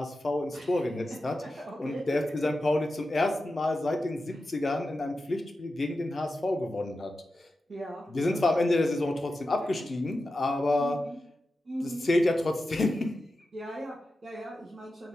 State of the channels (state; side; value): normal; both; correlation 0.92